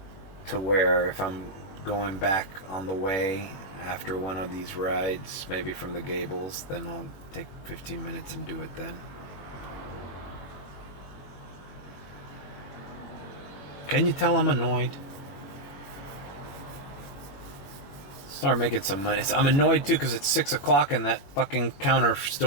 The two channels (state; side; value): late; right; 21 ms